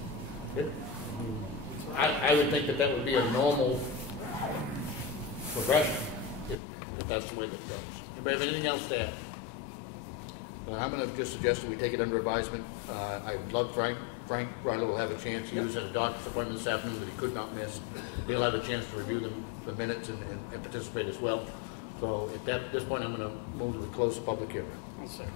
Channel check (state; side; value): drops out; right; at 6.6 s